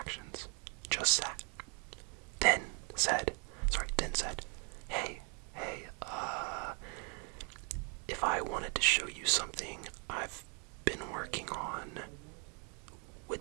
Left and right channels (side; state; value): left; quieter; 37.0 dB